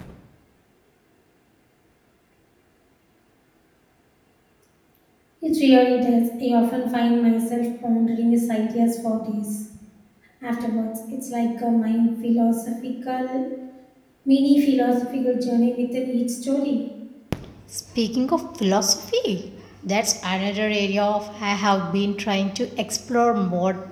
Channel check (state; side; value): identical; both; correlation 1.00